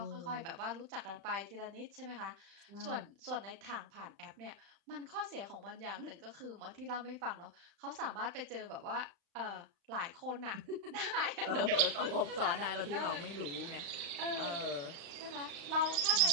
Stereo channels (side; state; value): left; late; 35 ms